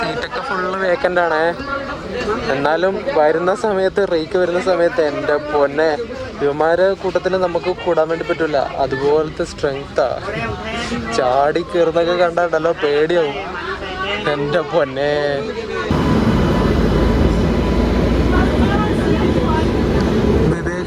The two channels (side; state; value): both; identical; correlation 1.00